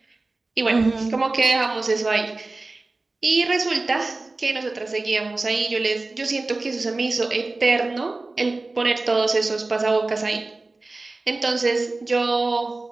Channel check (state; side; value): quieter; left; 3.3 dB